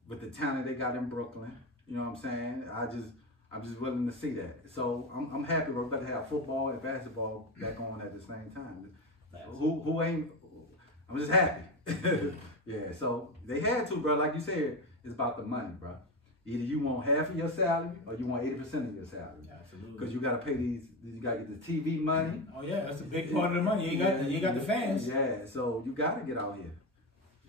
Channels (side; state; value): both; normal; correlation 0.18